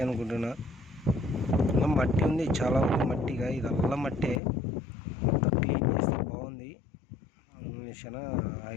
అనుకుంటున్నా. ఇంకా మట్టి ఉంది, చాలా ఉంది మట్టిగా. ఇదల్లా మట్టే, మొత్తం క్లీన్ చేస్తే బాగుంది. చాలా హై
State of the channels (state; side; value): drops out; right; at 4.4 s